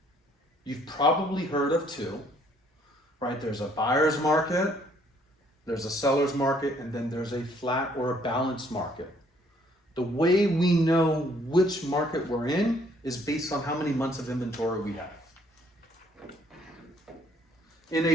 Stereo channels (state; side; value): normal; both; correlation 0.64